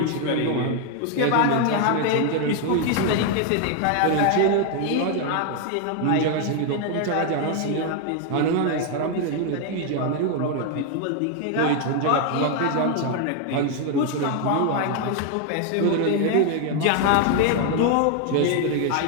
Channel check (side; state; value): both; different; correlation 0.01